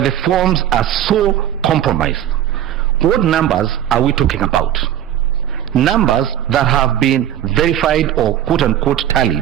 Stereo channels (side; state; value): left; quieter; 11.2 dB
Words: forms are so compromised, what numbers are we talking about? Numbers that have been verified or quote-unquote